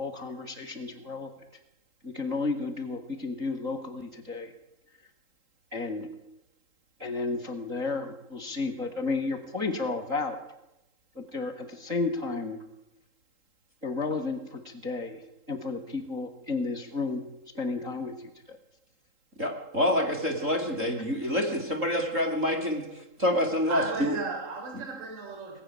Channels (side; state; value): left; late; 3.8 ms